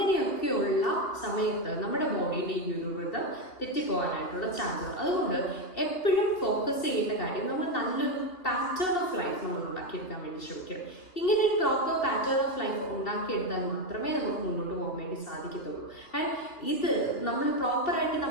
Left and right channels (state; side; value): late; right; 2.7 ms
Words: സമയത്ത് നമ്മുടെ ബോഡിയുടെ ഈ ഒരു വൃതം തെറ്റിപ്പോകാനായിട്ടുള്ള ചാൻസ് ഉണ്ട്. അതുകൊണ്ട് എപ്പോഴും ഫോക്കസ് ചെയ്യേണ്ട കാര്യം നമ്മൾ നല്ലൊരു പാറ്റേൺ ഓഫ് ലൈഫ് നമ്മൾ ഉണ്ടാക്കിയെടുക്കാൻ വേണ്ടി ശ്രമിക്കണം. ഇങ്ങനെ ഒരു പ്രോപ്പർ പാറ്റേൺ ഓഫ് ലൈഫ് ഉണ്ടാക്കിയെടുത്താൽ മാത്രമേ നമുക്ക് മുന്നോട്ട് പോകാൻ വേണ്ടി സാധിക്കത്തുള്ളൂ. ആൻഡ് ഇത് നമ്മൾ പ്രോപ്പറായിട്ട്